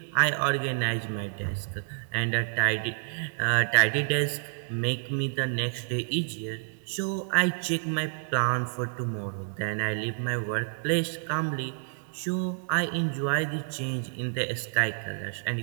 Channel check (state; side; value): silent; left; digital silence